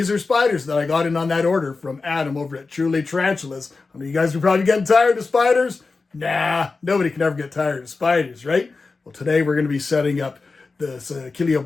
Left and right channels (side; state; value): right; quieter; 4.1 dB